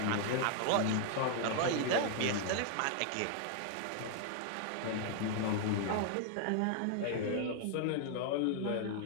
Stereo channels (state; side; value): different; both; correlation 0.00